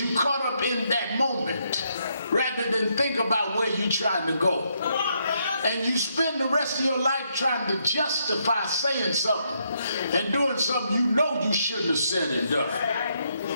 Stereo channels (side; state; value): both; inverted; correlation -0.76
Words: caught up in that moment rather than think about where you're trying to go. And you spend the rest of your life trying to justify saying something and doing something you know you shouldn't have said and done.